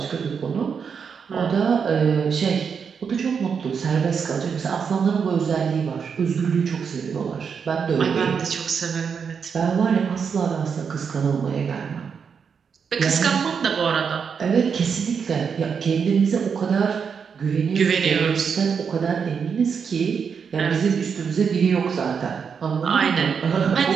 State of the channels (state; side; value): quieter; left; 6.4 dB